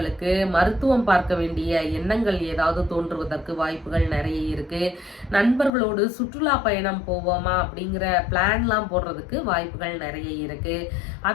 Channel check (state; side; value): drops out; right; at 5.7 s